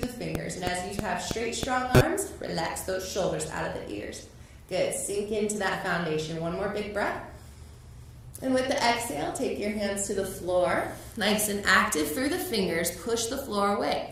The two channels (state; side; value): identical; both; correlation 1.00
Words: fingers. And as you have straight, strong arms, relax those shoulders out of the ears. Good. Sink into that foundation. One more big breath. And with the exhale, take your hands to the floor. Nice and active through the fingers. Push the floor away.